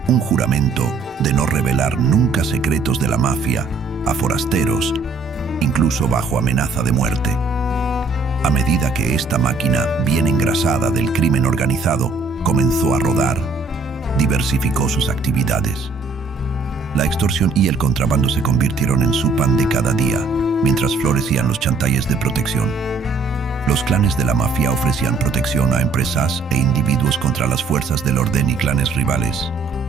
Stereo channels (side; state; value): left; quieter; 4.1 dB